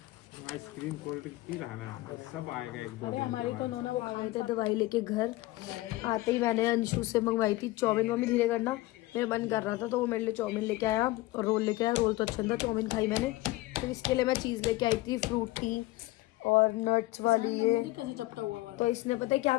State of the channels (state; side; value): quieter; right; 18.9 dB